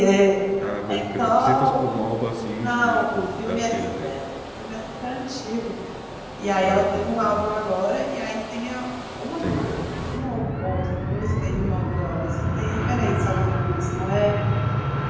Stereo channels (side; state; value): both; identical; correlation 1.00